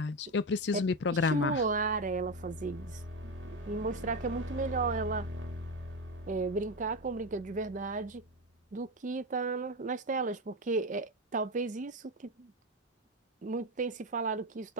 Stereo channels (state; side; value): normal; both; correlation 0.15